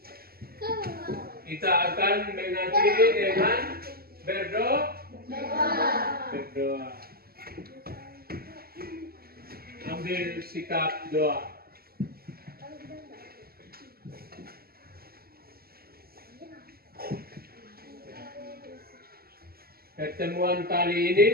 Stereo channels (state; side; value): late; left; 0.45 ms